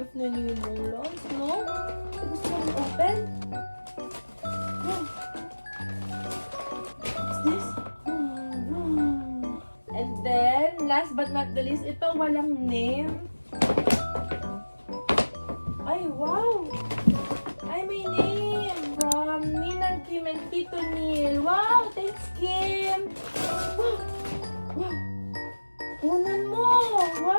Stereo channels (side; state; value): both; inverted; correlation -1.00